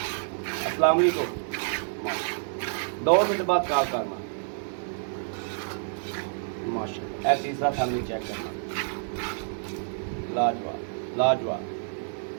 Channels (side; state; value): left; silent; digital silence